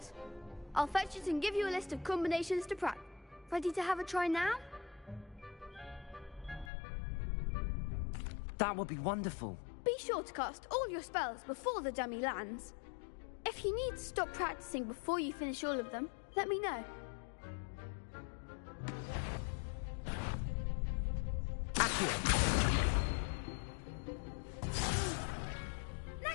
I'll fetch it and give you a list of combinations to practice. Ready to have a try now? That would be wonderful. Be sure to cast all your spells before the dummy lands. If you need to stop practicing before you finish all of them, let me know.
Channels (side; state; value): right; drops out; at 6.7 s